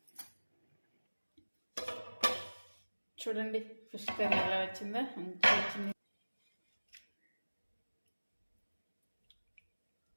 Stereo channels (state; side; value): inverted; both; correlation -1.00